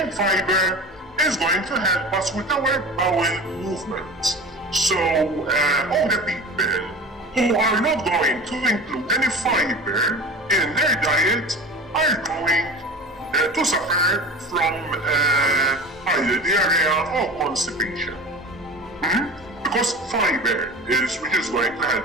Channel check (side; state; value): both; normal; correlation 0.35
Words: in fiber is going to help us with our bowel movement. So older people who are not going to include any fiber in their diet are going to suffer from either diarrhea or constipation. Because fiber which is going to